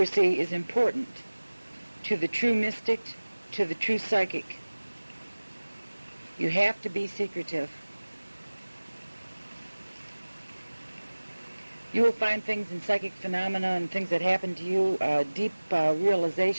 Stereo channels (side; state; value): both; inverted; correlation -1.00